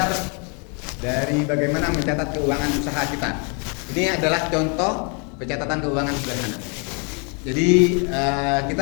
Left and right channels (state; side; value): quieter; right; 36.6 dB